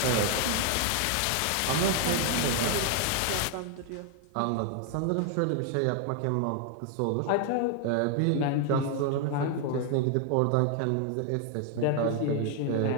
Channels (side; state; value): both; different; correlation 0.00